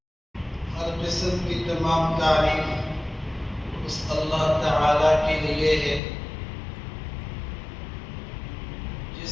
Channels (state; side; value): drops out; right; at 6.0 s